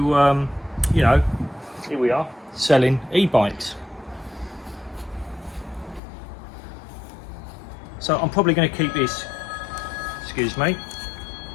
you know, here we are selling e-bikes. So I'm probably going to keep this. Excuse me.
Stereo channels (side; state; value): right; drops out; at 6.0 s